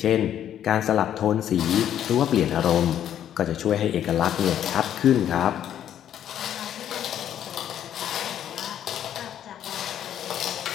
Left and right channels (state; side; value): quieter; right; 10.4 dB